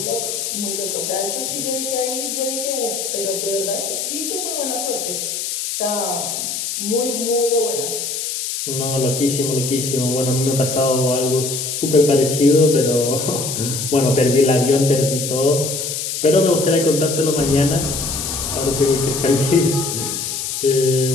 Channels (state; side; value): noise; left; hiss, 3 dB below the sound